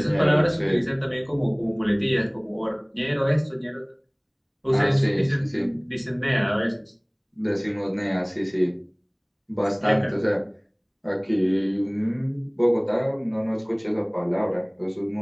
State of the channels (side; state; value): both; identical; correlation 1.00